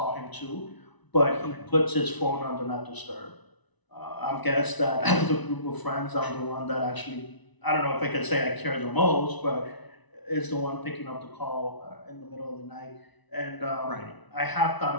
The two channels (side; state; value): right; late; 1.0 ms